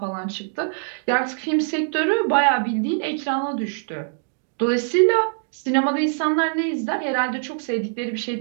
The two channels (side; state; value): left; silent; digital silence